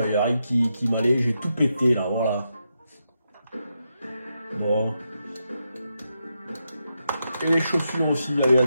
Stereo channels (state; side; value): inverted; both; correlation -0.84